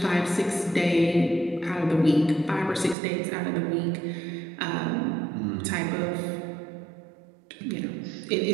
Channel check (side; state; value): left; drops out; at 3.0 s